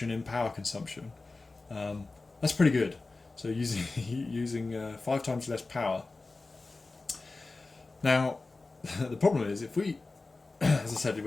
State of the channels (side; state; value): right; quieter; 3.5 dB